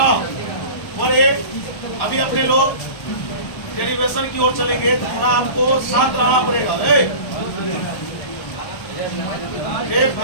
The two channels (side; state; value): right; late; 1.1 ms